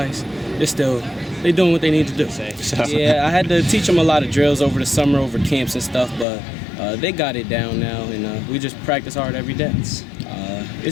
they're doing what they need to do. Yeah, I had to teach them a lot of drills over the summer, over camps and stuff, but they got it down now, and we just practice hard every day.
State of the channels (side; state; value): right; drops out; at 6.2 s